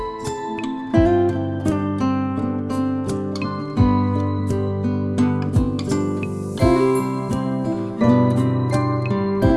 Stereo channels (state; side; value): identical; both; correlation 1.00